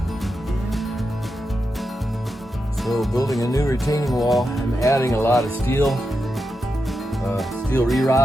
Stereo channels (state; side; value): normal; both; correlation 0.87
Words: So building a new retaining wall, I'm adding a lot of steel